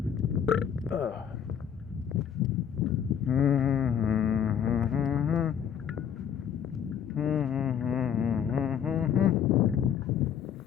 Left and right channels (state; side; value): quieter; right; 8.6 dB